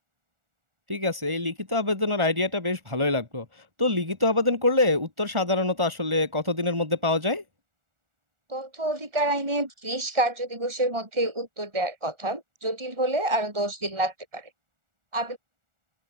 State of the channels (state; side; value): late; left; 1.4 ms